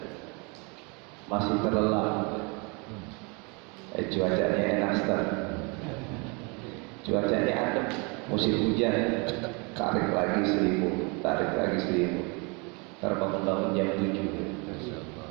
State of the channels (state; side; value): quieter; left; 30.9 dB